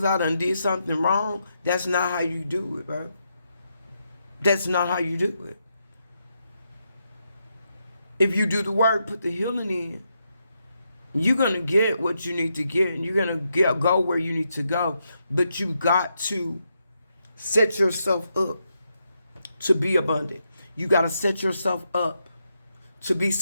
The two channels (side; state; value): both; inverted; correlation -0.82